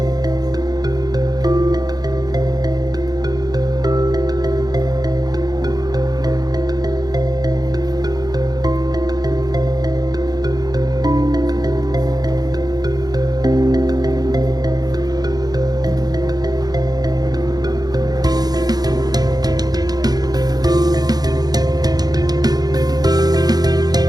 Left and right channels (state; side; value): late; left; 0.19 ms